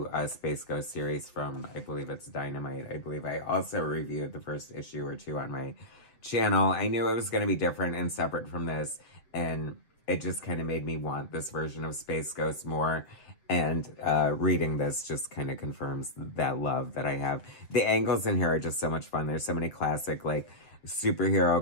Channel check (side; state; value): right; late; 7.7 ms